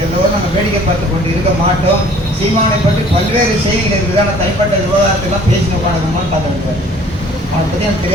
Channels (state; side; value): normal; both; correlation 0.53